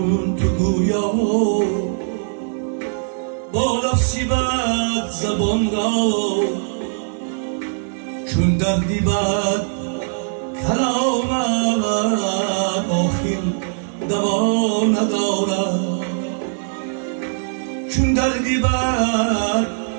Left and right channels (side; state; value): left; silent; digital silence